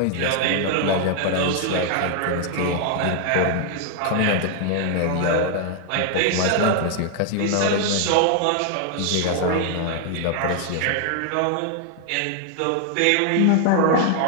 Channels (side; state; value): both; different; correlation 0.00